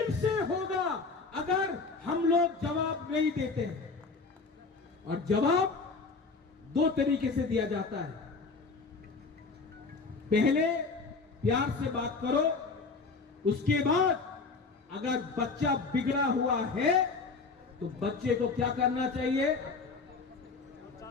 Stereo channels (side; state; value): right; quieter; 4.3 dB